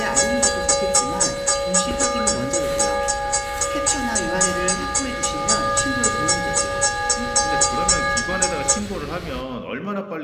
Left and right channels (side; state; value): both; identical; correlation 1.00